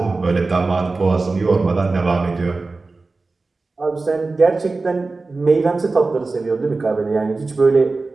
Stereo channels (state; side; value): quieter; left; 3.6 dB